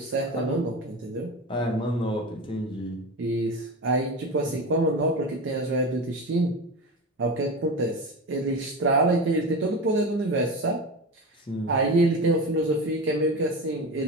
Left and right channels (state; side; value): normal; both; correlation 0.25